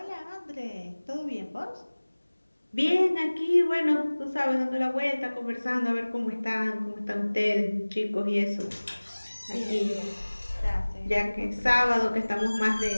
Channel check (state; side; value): inverted; both; correlation -1.00